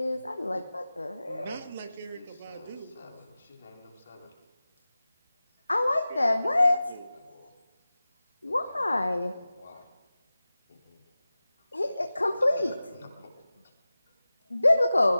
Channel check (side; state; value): both; inverted; correlation -0.96